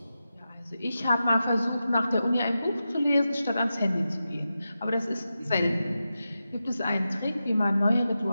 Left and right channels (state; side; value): inverted; both; correlation -0.91